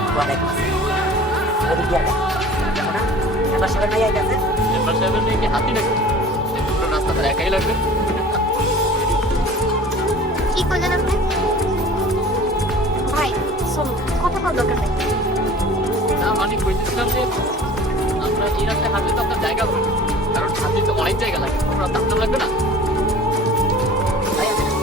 ওয়ালাইকুম আসসালাম। ওদিক দিয়ে আগে দেখো না, মেম্বার সাহেবের মাইয়া গেছে। মেম্বার সাহেবের মেয়ে কি হাতি নাকি? পুরো রাস্তা তার একাই লাগবে। কি করলেন আপনি? ভাই শোনো, কথা বল দরকার নেই। না মানে কইতেছিলাম যে আমরা এই রাস্তায় হাঁটলে তো আপনার জায়গা হবে না। কারণ হাতি তো অনেক জায়গা লাগে, তোমরা দাঁড়াতে লাগবে না। ভাই আমি না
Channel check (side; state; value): both; normal; correlation 0.44